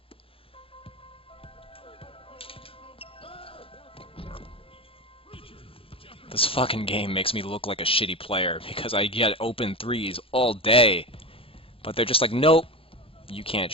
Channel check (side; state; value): right; late; 0.27 ms